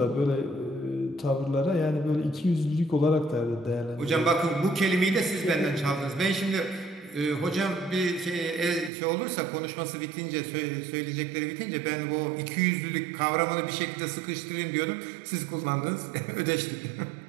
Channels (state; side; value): drops out; left; at 8.9 s